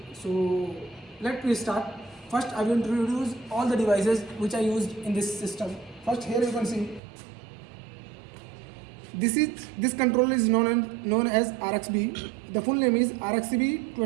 So let me start. First I will introduce all the devices which I used in this system. First, here you can see this controller is known as RXB. The full name is RXB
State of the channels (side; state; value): left; drops out; at 7.0 s